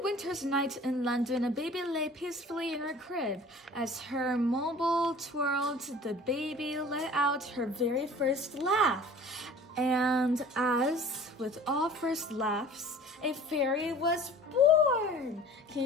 winter's night in London, a baby lay peacefully in her crib. As her mobile twirled, the baby let out her very first laugh. And as with all first laughs, a fairy was born. Can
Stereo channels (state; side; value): normal; both; correlation 0.45